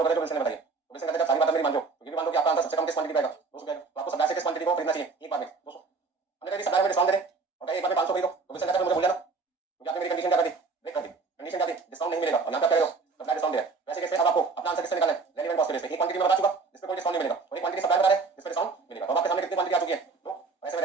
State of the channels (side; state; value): left; quieter; 4.4 dB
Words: करें जो विल्सन ने बताई, तो विल्सन कहता है जब सारी बातें मेरी मान लो, तो ये भी मान लो कि आपका आंसर सबसे कम किस क्वांटिटी पे आएगा? 200 पे आएगा, तो आपको सप्लायर से किस क्वांटिटी को खरीदना चाहिए? एक बार में 200। हमने कहा सप्लायर में डिस्काउंट दे दे और कहा एक बार में 500 खरीदो, तो विल्सन कहता है मुझे भूल जाना, क्योंकि आपने मेरी कंडीशन क्या कर दी? ब्रेक कर दी। कंडीशन क्या थी? डिस्काउंट नहीं मिलेगा, और यहां पे क्या कह रहे हो? सप्लायर डिस्काउंट दे रहा है। वैसे कैसे अब आपको अपना आंसर किससे निकालना है? कैरी एंड कॉस्ट के बेस पे एक क्वांटिटी में बता चुका जिस पे कोई डिस्काउंट नहीं मिलेगा और एक क्वांटिटी सप्लाई बता रहा है जिस पे डिस्काउंट मिलेगा। तो आपके सामने कितनी क्वांटिटी आ चुकी है तो ऐसे में